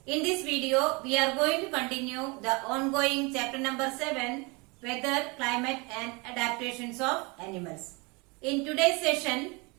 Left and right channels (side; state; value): left; quieter; 28.2 dB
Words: In this video, we are going to continue the ongoing chapter number 7, Weather, Climate and Adaptations of Animals. In today's session,